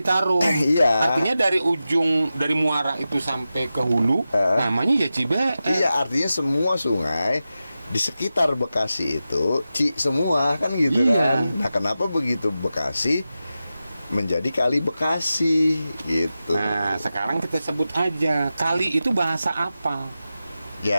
Iya. Artinya dari muara itu sampai ke hulu, namanya ya Cibeet. Iya, artinya semua sungai di sekitar Bekasi itu Ci semua kan gitu Iya. kan. Nah, kenapa begitu Bekasi menjadi Kali Bekasi gitu. Nah, sekarang kita sebut aja kali itu bahasa apa?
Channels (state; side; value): inverted; both; correlation -0.92